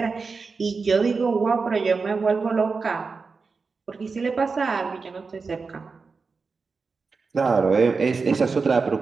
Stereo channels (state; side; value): quieter; left; 4.6 dB